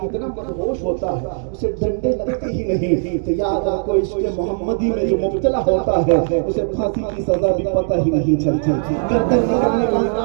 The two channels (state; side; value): silent; left; digital silence